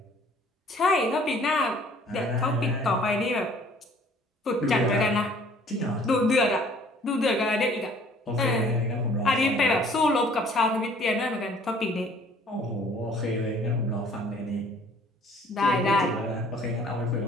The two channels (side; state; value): both; normal; correlation 0.55